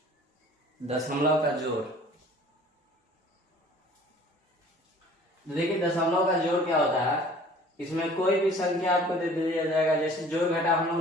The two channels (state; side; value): normal; both; correlation 0.49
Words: दशमलव का जोड़। देखिए दशमलव का जोड़ क्या होता है। इसमें कोई भी संख्या आपको दे दिया जाएगा। जैसे जोड़ घटाव हम